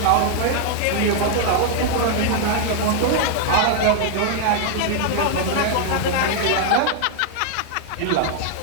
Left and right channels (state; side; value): different; both; correlation 0.00